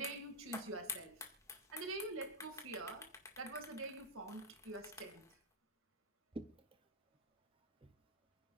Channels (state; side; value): normal; both; correlation -0.03